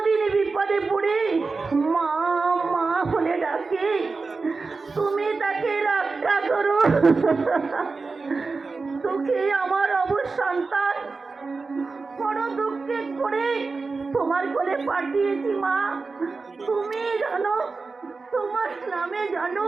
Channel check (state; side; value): quieter; left; 4.1 dB